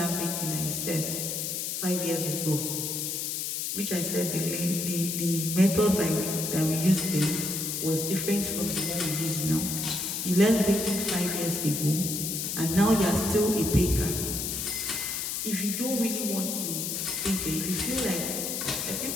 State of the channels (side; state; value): left; noise; hiss, 2 dB below the sound